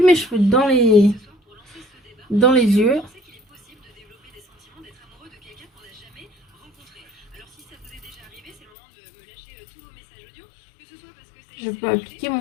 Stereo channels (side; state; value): right; drops out; at 8.6 s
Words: mes cheveux dans les yeux. Je peux appliquer